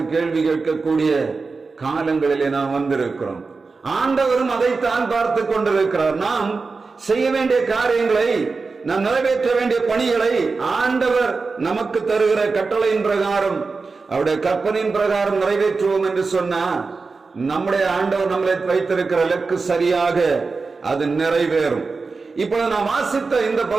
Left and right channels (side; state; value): left; quieter; 4.3 dB